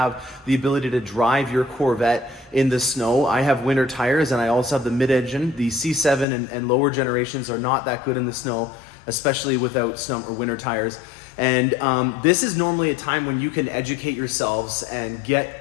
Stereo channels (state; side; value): drops out; right; at 6.2 s